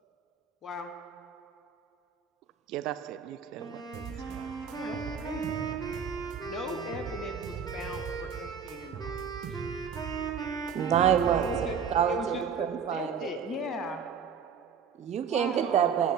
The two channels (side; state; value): left; quieter; 6.7 dB